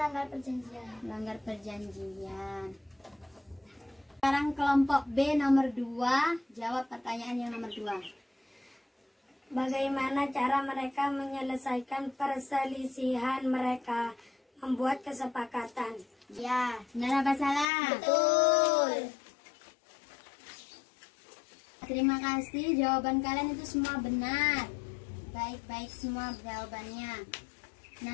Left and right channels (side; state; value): right; drops out; at 17.7 s